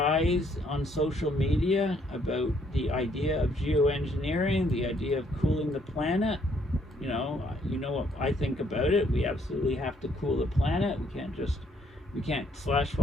on social media about the idea of geoengineering, the idea of cooling the planet. You know what I think about it. We absolutely have to cool the planet. We can't slash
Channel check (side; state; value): both; normal; correlation 0.68